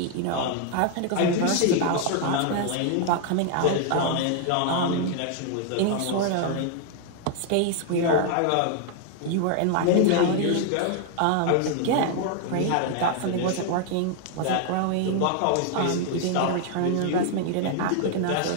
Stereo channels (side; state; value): both; different; correlation 0.00